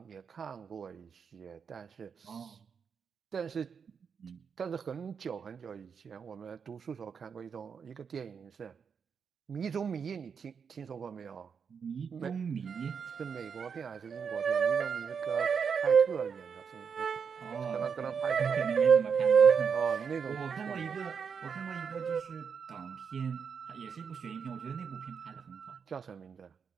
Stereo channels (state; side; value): quieter; left; 6.5 dB